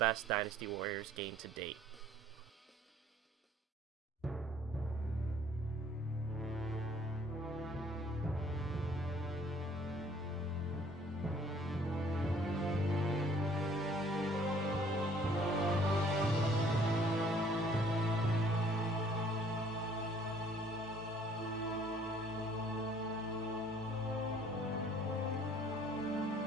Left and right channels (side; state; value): both; normal; correlation 0.57